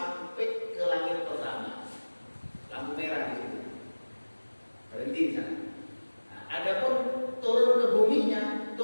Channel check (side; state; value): both; inverted; correlation -1.00